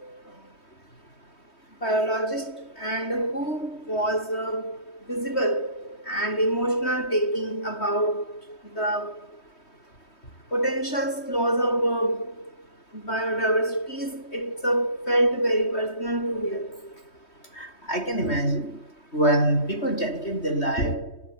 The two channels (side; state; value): right; late; 3.2 ms